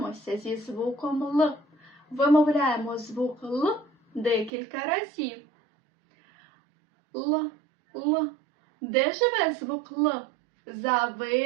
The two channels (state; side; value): drops out; left; at 4.5 s